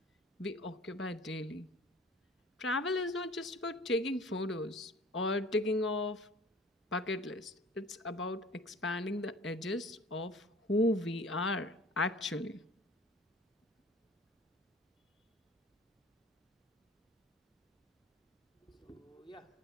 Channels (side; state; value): both; normal; correlation 0.46